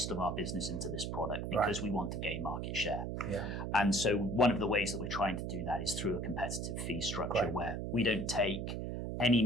of our business into this product, because we want to gain market share. Yeah. And so one of the ways that we're trying to do that is through a competitive fee structure where we don't take any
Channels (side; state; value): right; noise; hum, 3 dB below the sound